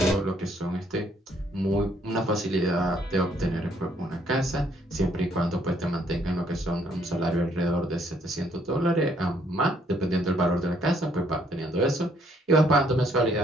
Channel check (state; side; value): normal; both; correlation 0.67